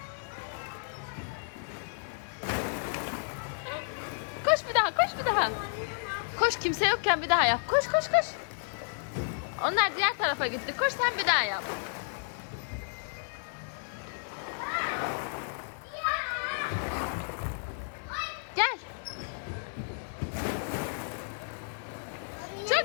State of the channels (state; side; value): silent; right; 56 dB below the other